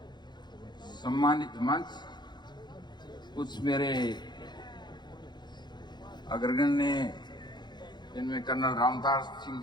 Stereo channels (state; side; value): late; right; 0.21 ms